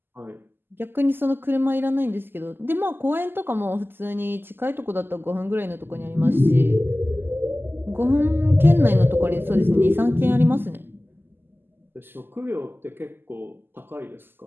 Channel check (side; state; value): left; late; 0.099 ms